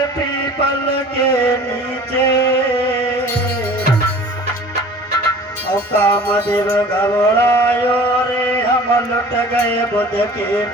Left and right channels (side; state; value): both; normal; correlation 0.44